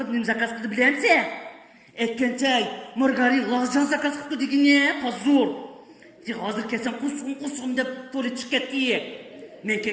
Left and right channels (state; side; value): identical; both; correlation 1.00